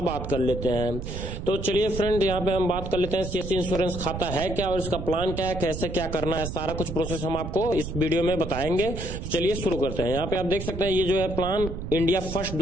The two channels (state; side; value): noise; right; rumble, 6 dB below the sound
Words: बात कर लेते हैं। तो चलिए फ्रेंड यहाँ पे हम बात कर लेते हैं सीएससी इंश्योरेंस खाता है क्या और इसका प्लान क्या है, कैसे क्या करना है, सारा कुछ प्रोसेस हम आपको इस वीडियो में बताएंगे। तो चलिए शुरू करते हैं। यहाँ पे आप देख सकते हैं ये जो है प्लान इंडिया फर्स्ट